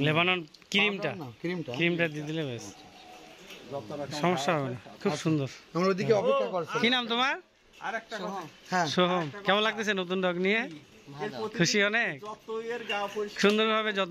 লেবানন ক্রিমটা দিয়ে দিলে বেশ সমস্যা হবে না। খুব সুন্দর। আমরা ওইদিকে অপেক্ষা করছি। কি নাম তোমার? আরেকটা কথা, হ্যাঁ সোহম। কেমন লাগতেছে নতুন ডগ নিয়ে? খুশি অনেক? যত এর গা পরিষ্কার সুন্দরভাবে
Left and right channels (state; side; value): identical; both; correlation 1.00